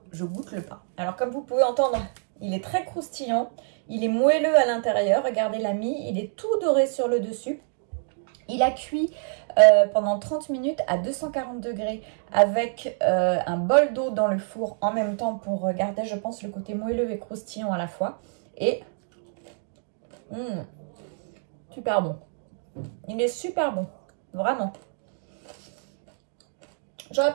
je goûte le pain. Alors comme vous pouvez entendre, il est très croustillant, il est moelleux à l'intérieur, regardez la mie, il est tout doré sur le dessus. Il a cuit pendant 30 minutes à 240 degrés avec un bol d'eau dans le four en même temps pour garder, je pense, le côté moelleux et croustillant à la fois. Et super bon. Il est super bon, vraiment. J'aurais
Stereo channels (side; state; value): left; silent; 60 dB below the other